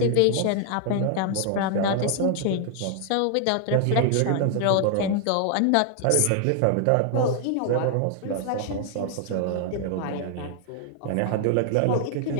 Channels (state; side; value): different; both; correlation 0.00